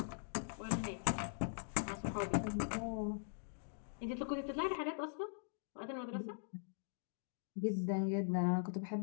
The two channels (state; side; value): silent; right; digital silence